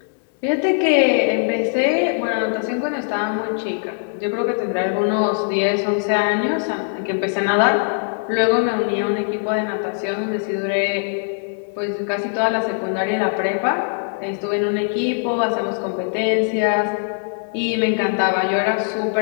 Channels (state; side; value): silent; right; digital silence